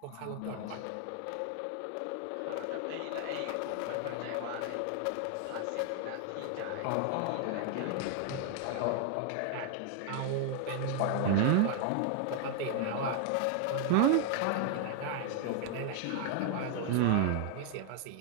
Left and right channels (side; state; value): both; different; correlation 0.00